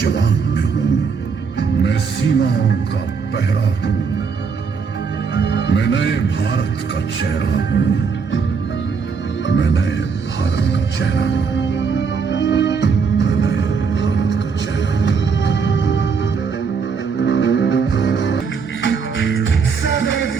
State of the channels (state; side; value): quieter; left; 5.5 dB